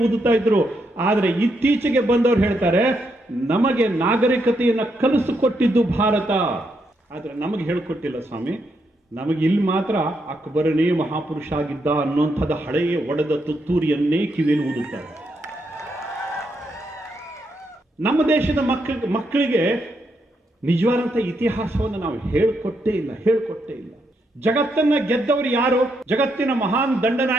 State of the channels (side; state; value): both; normal; correlation 0.79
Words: ಊದುತ್ತಾ ಇದ್ರು. ಆದರೆ ಇತ್ತೀಚೆಗೆ ಬಂದವರು ಹೇಳ್ತಾರೆ, ನಮಗೆ ನಾಗರಿಕತೆಯನ್ನು ಕಲಿಸಿಕೊಟ್ಟಿದ್ದು ಭಾರತ, ಆದ್ರೆ ನಮಗೆ ಹೇಳ್ಕೊಟ್ಟಿಲ್ಲ ಸ್ವಾಮಿ. ನಮಗೆ ಇಲ್ಲಿ ಮಾತ್ರ ಅಕ್ಬರನೇ ಮಹಾಪುರುಷ ಆಗಿದ್ದ ಅನ್ನುವಂಥದ್ದು ಹಳೆಯ ಒಡೆದ ತುತ್ತೂರಿಯನ್ನೇ ಕಿವಿಯಲ್ಲಿ ಊದುತ್ತಾರೆ. ನಮ್ಮ ದೇಶದ ಮಕ್ಕಳಿಗೆ ನಿಜವಾದಂಥ ಇತಿಹಾಸವನ್ನು ನಾವು ಹೇಳ್ಕೊಟ್ಟೇ ಇಲ್ಲ. ಜಗತ್ತನ್ನ ಗೆದ್ದವರು ಯಾರು? ಜಗತ್ತಿನ ಮಹಾನ್